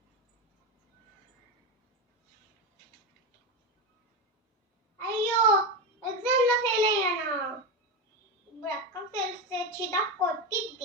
అయ్యో ఎగ్జామ్ లో ఫెయిల్ అయ్యానా. ఇప్పుడు అక్క తెలిస్తే చిదా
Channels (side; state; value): both; normal; correlation 0.15